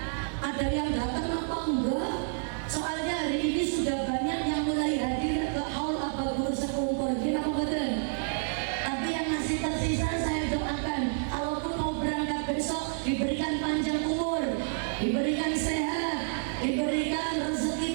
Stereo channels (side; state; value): left; silent; 58 dB below the other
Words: ada yang datang apa enggak. Soalnya hari ini sudah banyak yang mulai hadir ke haul ababur sekumpul. Gimana betul? Tapi yang masih tersisa saya doakan, kalaupun mau berangkat besok diberikan panjang umur, diberikan sehat, diberikan